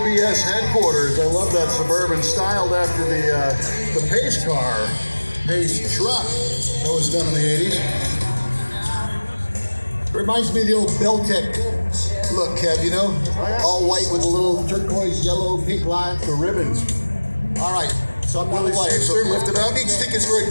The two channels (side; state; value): both; inverted; correlation -1.00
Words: headquarters. I love that Suburban, styled after the Pace car, Pace truck that was done in the 80s. Reminds me of the old Beltec look, Kev, you know? All white with a little turquoise, yellow, pink lines. The ribbons. All right, so I'm not Willie white. So Shakespeare, lift it up. Who needs tickets for